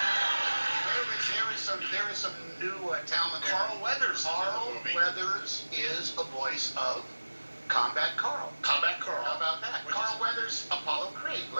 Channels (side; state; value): both; inverted; correlation -1.00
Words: There is some new talent. Carl Weathers. Carl Weathers is a voice of Combat Carl. Combat Carl. How about that? Carl Weathers, Apollo Creed,